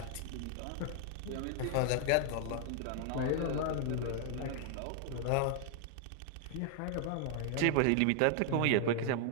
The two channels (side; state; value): both; different; correlation 0.00